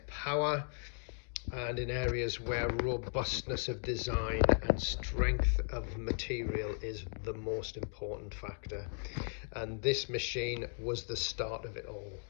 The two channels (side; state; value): right; silent; 53 dB below the other